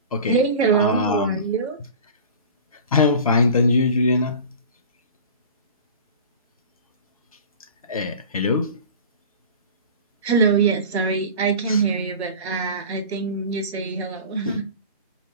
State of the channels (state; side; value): inverted; both; correlation -0.36